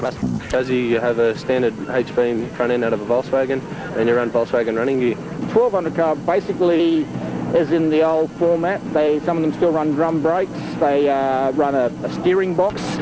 chassis, you have a standard H-beam front end out of a Volkswagen, and you run Volkswagen running gear. 1200 car basically is in the old format. Some of them still run drum brakes. They run a steering box.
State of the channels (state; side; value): identical; both; correlation 1.00